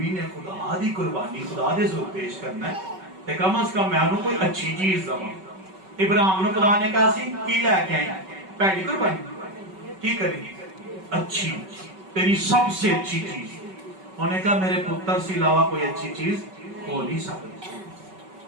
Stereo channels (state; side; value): late; left; 5.3 ms